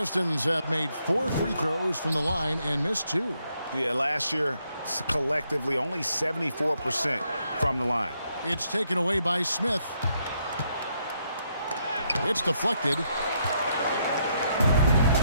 have made 4 free throws from the line and missed 2. Yeah, last year, collectively, only 74% from the line. It's taken away by Smith. It's deflected,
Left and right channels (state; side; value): inverted; both; correlation -0.76